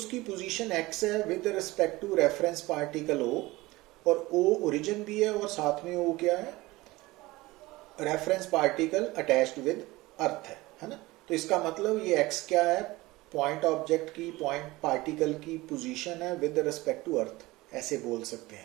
पोजीशन x है with respect to reference particle O, और O ओरिजिन भी है और साथ में O क्या है, reference particle attached with earth है ना। तो इसका मतलब ये x क्या है, पॉइंट ऑब्जेक्ट की, पॉइंट पार्टिकल की पोजीशन है विद रिस्पेक्ट टू अर्थ, ऐसे बोल सकते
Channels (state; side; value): quieter; left; 20.1 dB